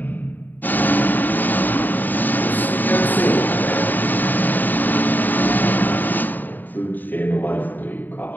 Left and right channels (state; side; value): late; right; 0.089 ms